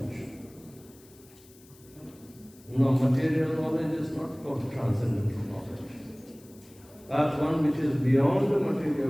No, material knowledge is not called transcendental knowledge. That one which is beyond the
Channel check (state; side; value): noise; left; hiss, 25 dB below the sound